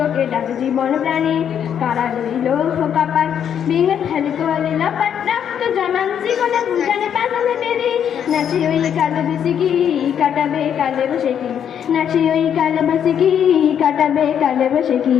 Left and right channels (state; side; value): quieter; right; 8.7 dB